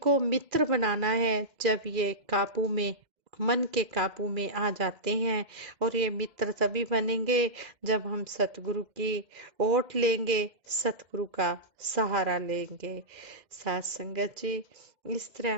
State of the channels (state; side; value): late; left; 2.0 ms